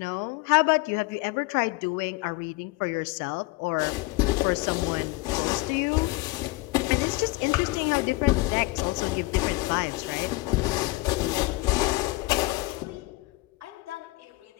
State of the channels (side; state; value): right; quieter; 22.2 dB